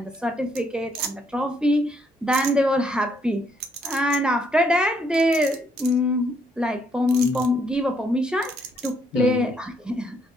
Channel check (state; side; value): normal; both; correlation 0.71